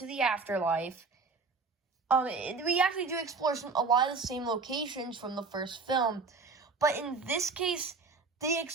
the afterlife, we actually do explore a lot of the same locations from the first film, but in this case, they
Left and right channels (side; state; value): left; quieter; 4.4 dB